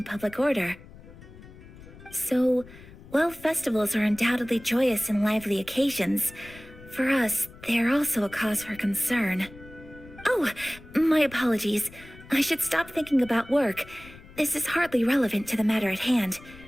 public order. So, while festivals are undoubtedly joyous and lively occasions, for us, they are also a cause for concern. Oh, my apologies. I should stop thinking about work. This is hardly relevant to the matter at hand.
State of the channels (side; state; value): left; noise; rumble, 19 dB below the sound